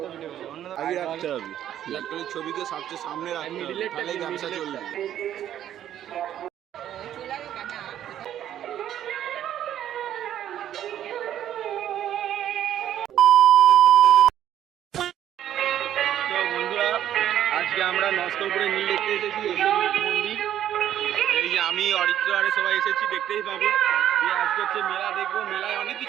ভিডিও আগে রাখতে হবে, ইলেকট্রনিক ছবিকে সবচেয়ে সামনে রাখতে হবে, তাহলেই ব্যবসা চলবে। তো বন্ধুরা, আজকে আমরা নস্করপুরে নীল দেখতে এসেছি, মন্দির। এই যে আমি অরিত্র আরে সবাই এসেছি, দেখতেই পাবে। আজকে হচ্ছে মেলা দেখবো, মেলায় অনেক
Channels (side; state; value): left; quieter; 11.1 dB